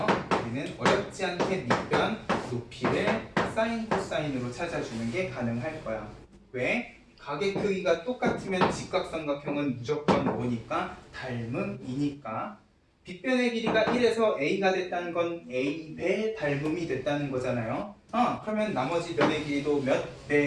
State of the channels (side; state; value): both; identical; correlation 1.00